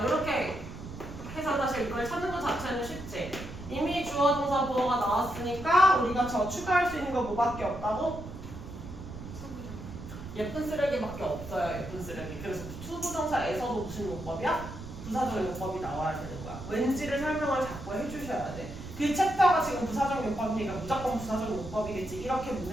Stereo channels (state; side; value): noise; right; rumble, 12 dB below the sound